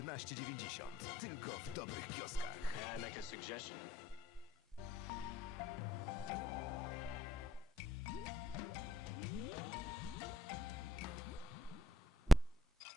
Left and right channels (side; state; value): both; normal; correlation 0.73